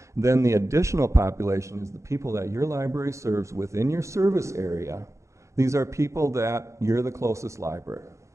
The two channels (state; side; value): late; left; 0.14 ms